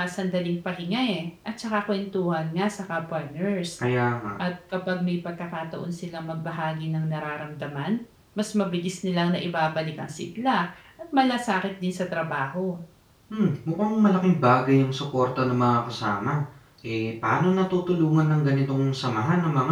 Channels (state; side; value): identical; both; correlation 1.00